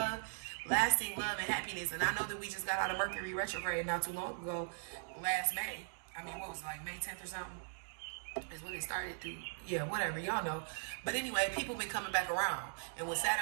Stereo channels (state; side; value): silent; left; digital silence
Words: and happiness. And I know that we just got out of Mercury retrograde not too long ago, last May. I mean, what was it, like May 10th or something? Is when it started to, yeah, whatever, y'all know. But anyway, people been coming back around. And with